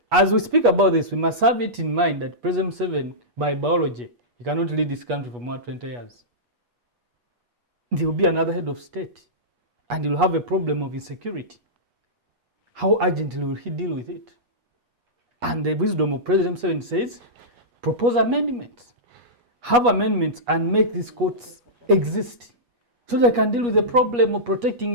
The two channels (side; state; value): left; late; 8.3 ms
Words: as we speak about this, we must have it in mind that President Museveni, by biology, he cannot lead this country for more than 20 years. There will be another head of state, and he will have a problem of insecurity. How urgently will he deal with it? And the wisdom of President Museveni says, propose amendments. Have amendments and make these courts exist so they can deal with the problem of